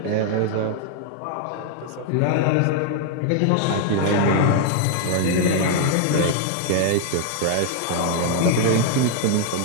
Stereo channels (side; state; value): both; different; correlation 0.00